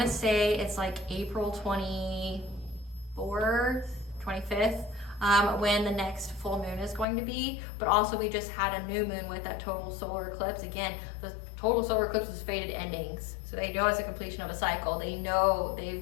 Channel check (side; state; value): right; drops out; at 7.1 s